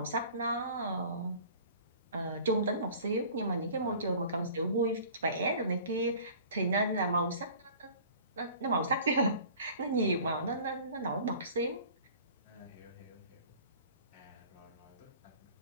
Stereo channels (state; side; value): inverted; both; correlation -0.46